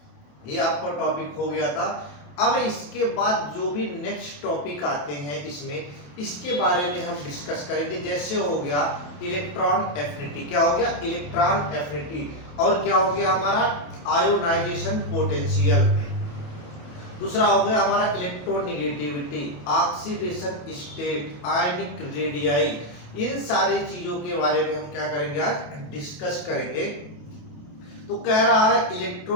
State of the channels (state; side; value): late; right; 28 ms